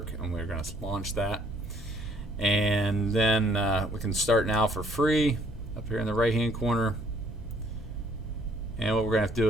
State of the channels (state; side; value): noise; right; hum, 16 dB below the sound